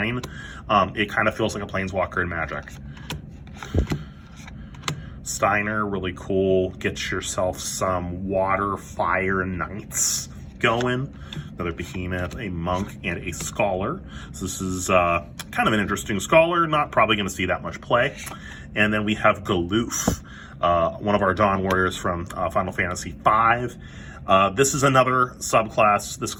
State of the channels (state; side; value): identical; both; correlation 1.00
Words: It kind of feels like a Planeswalker in Magic. Steiner, really cool. Get yourself some water, fire, knights going. Another Behemoth, a Monk, and a Scholar. So this is kind of an interesting Scholar. Not probably going to see that much play. And then we have Galoof, one of our Dawn Warriors from Final Fantasy V. This is another subclass. This